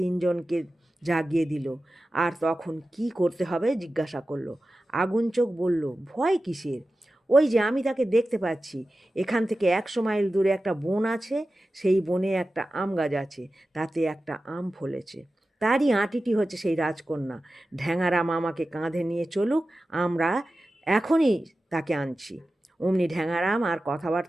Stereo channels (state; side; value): normal; both; correlation 0.94